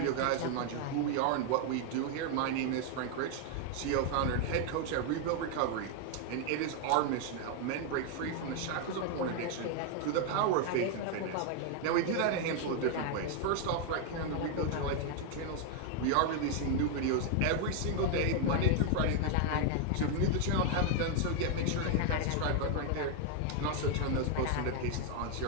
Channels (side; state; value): both; different; correlation 0.01